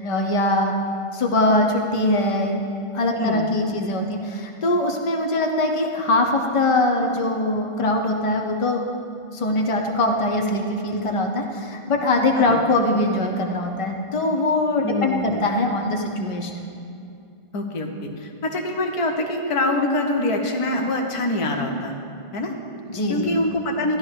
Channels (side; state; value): right; late; 1.5 ms